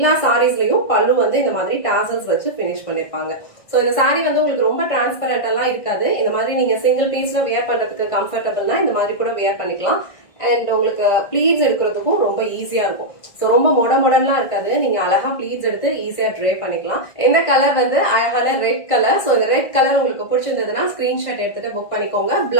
சாரீஸ்லயும் பல்லு வந்து இந்த மாதிரி டாசல்ஸ் வச்சு பினிஷ் பண்ணிருப்பாங்க. சோ இந்த சாரி வந்து உங்களுக்கு ரொம்ப டிரான்ஸ்பரண்ட் எல்லாம் இருக்காது. இந்த மாதிரி நீங்க சிங்கிள் பீஸ்ல வியர் பண்றதுக்கு கம்ஃபர்டபிள்னா இந்த மாதிரி கூட வியர் பண்ணிக்கலாம். அண்ட் உங்களுக்கு ப்ளீட்ஸ் எடுக்கிறதுக்கும் ரொம்ப ஈஸியா இருக்கும். சோ ரொம்ப மொடலாம் இருக்காது. நீங்க அழகா ப்ளீட்ஸ் எடுத்து ஈஸியா ட்ரே பண்ணிக்கலாம். இந்த கலர் வந்து அழகான ரெட் கலர். சோ இந்த ரெட் கலர் உங்களுக்கு பிடிச்சிருந்ததுன்னா ஸ்கிரீன்ஷாட் எடுத்துட்டு புக் பண்ணிக்கோங்க.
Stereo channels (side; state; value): right; late; 1.5 ms